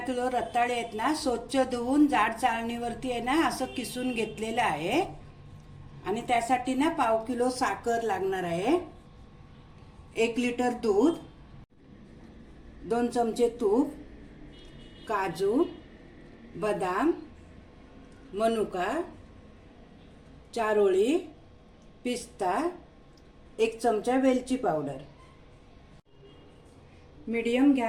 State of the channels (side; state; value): both; identical; correlation 1.00